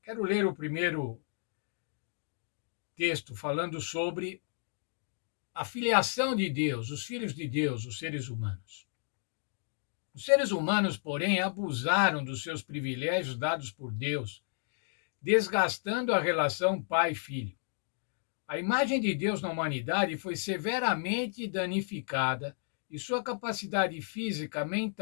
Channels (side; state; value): right; silent; digital silence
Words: Quero ler o primeiro texto falando sobre a filiação de Deus, os filhos de Deus, os seres humanos. Os seres humanos, porém, abusaram dos seus privilégios dados por Deus, desgastando a relação pai-filho. A imagem de Deus na humanidade foi severamente danificada e sua capacidade física,